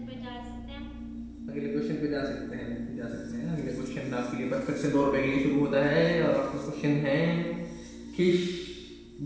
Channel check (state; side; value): identical; both; correlation 1.00